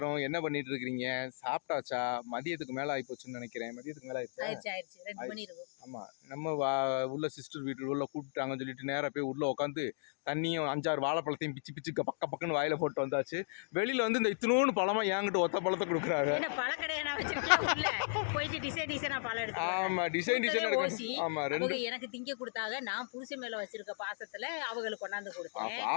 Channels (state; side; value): silent; right; digital silence